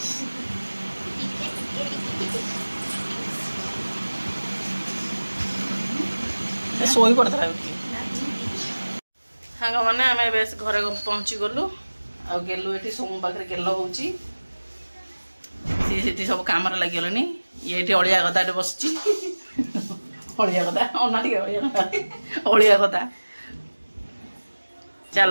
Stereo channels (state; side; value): inverted; both; correlation -1.00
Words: शोई पड़ता सांग मैंने आम बेस घरे पहुँची गलु आ गेलु ये सोमू पाखे गेल हो सब कम लगे ये अलिया गदा बस अलिया गदा अना टे अलिया गदा